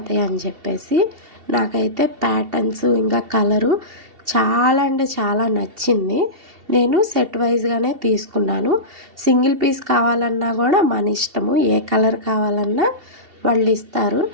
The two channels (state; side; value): late; left; 2.7 ms